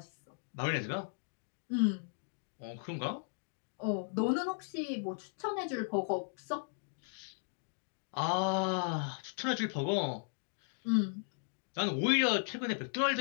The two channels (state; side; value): silent; right; digital silence